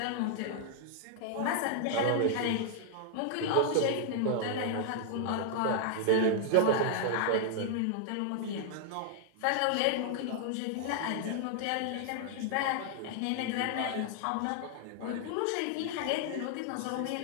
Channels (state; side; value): different; both; correlation -0.01